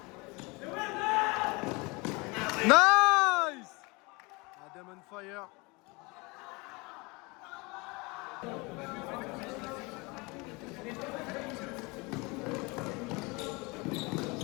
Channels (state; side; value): quieter; right; 26.6 dB